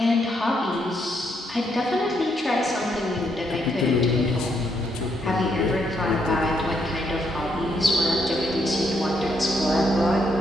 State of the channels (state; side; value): normal; both; correlation 0.75